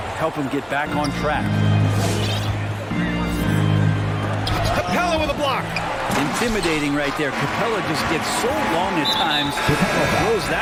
him get back on track. Capella with a block. Intimidating right there. Capella just gets so long at times, throws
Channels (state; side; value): identical; both; correlation 1.00